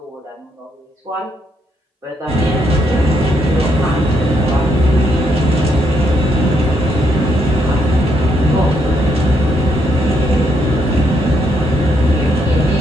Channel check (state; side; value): normal; both; correlation 0.75